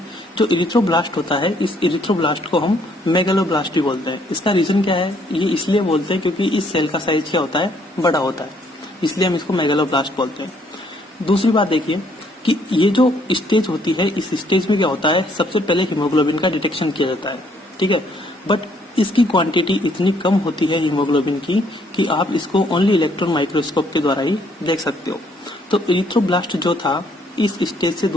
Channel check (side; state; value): both; normal; correlation 0.67